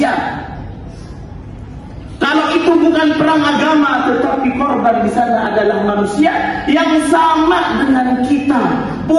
Kalau itu bukan perang agama, tetapi korban di sana adalah manusia yang sama dengan kita,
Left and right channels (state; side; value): identical; both; correlation 1.00